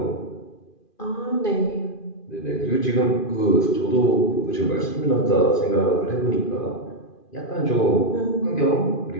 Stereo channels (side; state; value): right; late; 2.5 ms